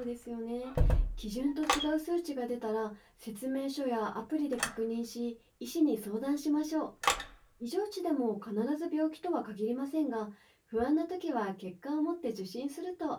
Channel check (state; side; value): identical; both; correlation 1.00